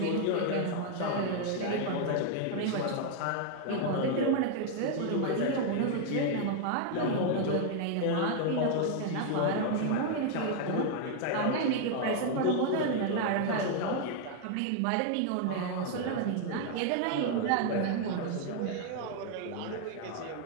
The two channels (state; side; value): different; both; correlation 0.00